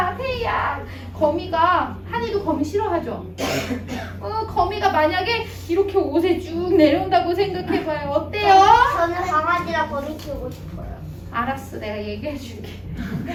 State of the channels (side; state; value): both; identical; correlation 1.00